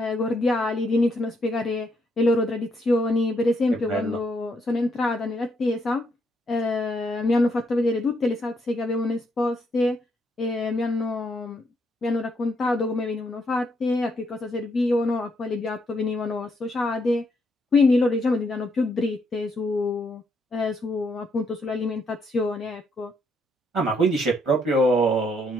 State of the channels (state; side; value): normal; both; correlation 0.75